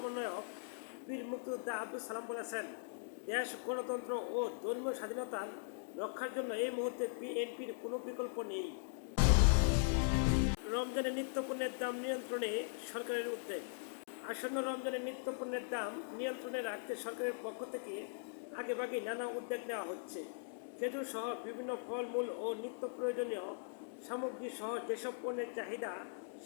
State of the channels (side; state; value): right; silent; digital silence